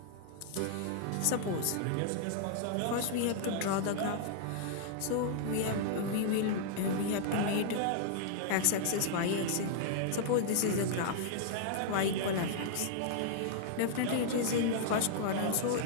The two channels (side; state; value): both; different; correlation -0.01